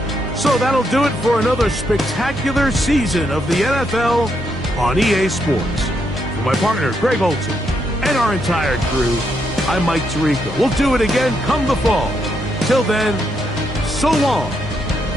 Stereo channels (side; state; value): both; normal; correlation 0.78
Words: So that'll do it for another spectacular season of the NFL on EA Sports. For my partner, Greg Olson, and our entire crew, I'm Mike Tirico. We'll do it again come the fall. Till then, so long